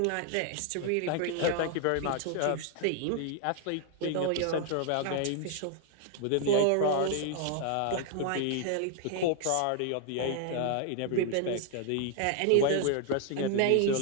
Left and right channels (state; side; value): different; both; correlation 0.00